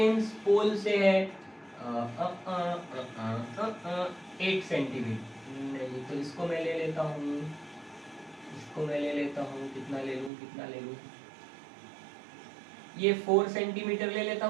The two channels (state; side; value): drops out; left; at 10.3 s